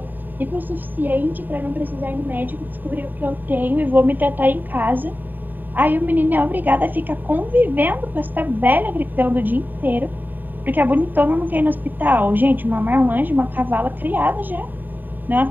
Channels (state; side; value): late; left; 0.090 ms